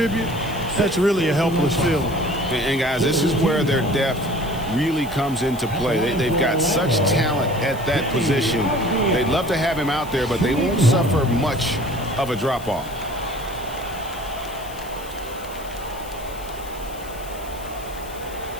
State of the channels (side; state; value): left; noise; hiss, 18 dB below the sound